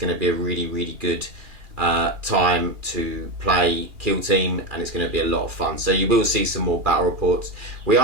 to be a really good time to play Kill Team, and it's going to be a lot of fun. So you will see some more battle reports. We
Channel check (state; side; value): late; left; 2.4 ms